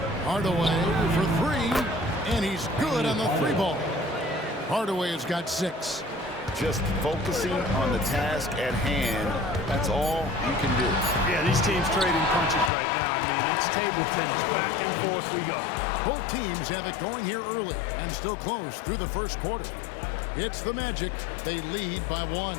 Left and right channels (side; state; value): right; drops out; at 12.7 s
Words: Hardaway for 3, and he's good on the 3 ball. Hardaway has got 6. Just focusing on the task at hand, that's all you can do. Yeah, these teams trading punches right now. I mean, it's table tennis. Back and forth we go. Both teams have it going here early and still close through the first quarter. It's the Magic. They lead by 1.